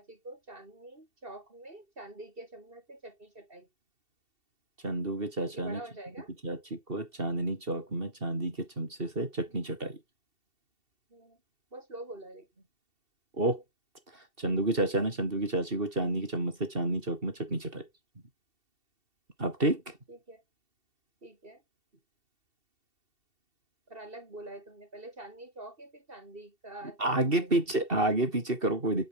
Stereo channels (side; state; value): left; late; 2.7 ms